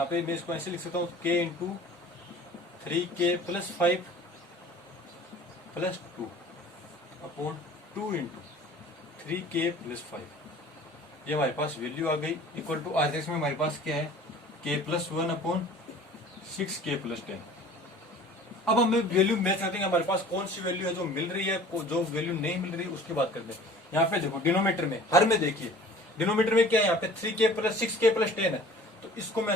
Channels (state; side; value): normal; both; correlation 0.46